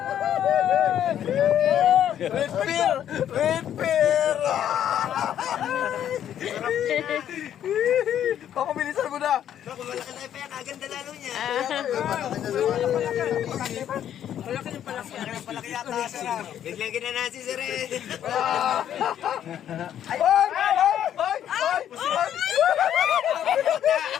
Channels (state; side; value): quieter; right; 10.3 dB